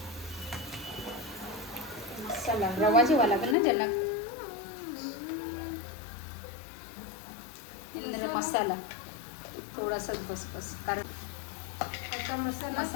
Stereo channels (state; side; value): drops out; right; at 3.6 s